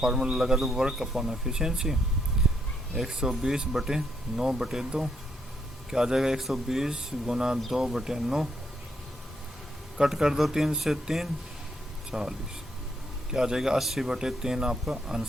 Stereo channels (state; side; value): normal; both; correlation 0.75